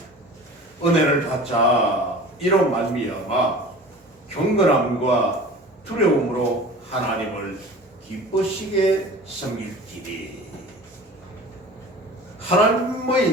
은혜를 받자 이로 말미암아 경건함과 두려움으로 하나님을 기쁘시게 섬길지니.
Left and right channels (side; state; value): both; normal; correlation 0.40